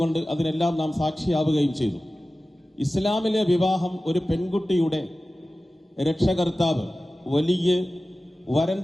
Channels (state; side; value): normal; both; correlation 0.96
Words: അതിനെല്ലാം നാം സാക്ഷിയാവുകയും ചെയ്തു. ഇസ്ലാമിലെ വിവാഹം ഒരു പെൺകുട്ടിയുടെ രക്ഷകർത്താവ് വലിയ